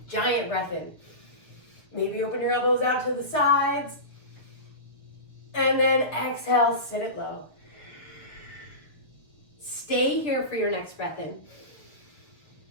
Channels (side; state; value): right; late; 6.7 ms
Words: giant breath in. Maybe open your elbows out to the sides. And then exhale, sit it low. Stay here for your next breath in.